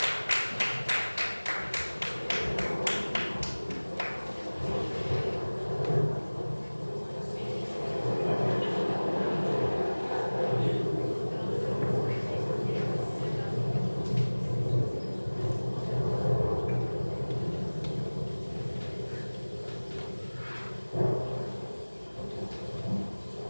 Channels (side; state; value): both; inverted; correlation -1.00